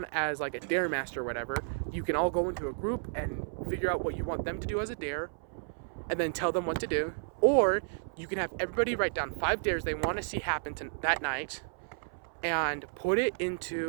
as like a dare master or whatever. You can all go into a group and figure out what you want them to do as a dare, and then tell them what to do. Or you can have everybody write down 5 dares they want to see happen that night, and put it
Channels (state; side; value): silent; left; 56 dB below the other